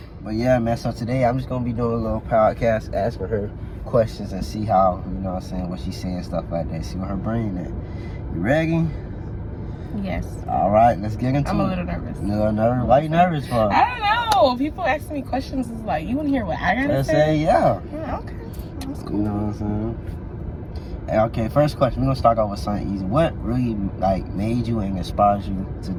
But yeah, man, so today I'm just going to be doing a little podcast, asking her questions and see how, you know what I'm saying, what she's saying, stuff like that. See what her brain is. You ready? Yes. All right, let's get into it. I'm a little nervous. A little nervous? Why you nervous for? I don't know. People asking me questions is like, you want to hear what I got to say? Yeah. Yeah, okay. That's cool. You know what I'm saying? Hey, okay, first question. We're going to start off with something easy. What really, made you and inspired you to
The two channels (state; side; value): identical; both; correlation 1.00